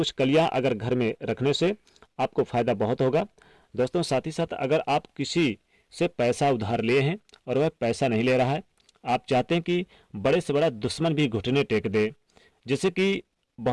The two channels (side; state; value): both; identical; correlation 1.00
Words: कलियां अगर घर में रखने से आपको फायदा बहुत होगा। दोस्तों, साथ ही साथ अगर आप किसी से पैसा उधार लिए हैं और वह पैसा नहीं ले रहा है, आप चाहते हैं कि बड़े से बड़ा दुश्मन भी घुटने टेक दे, जैसे कि